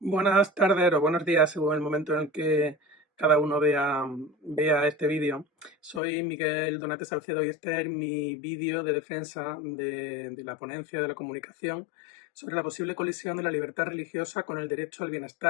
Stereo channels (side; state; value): right; drops out; at 6.0 s